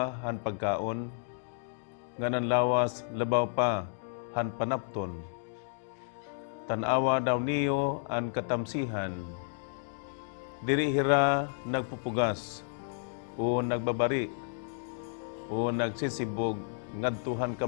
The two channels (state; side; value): silent; right; digital silence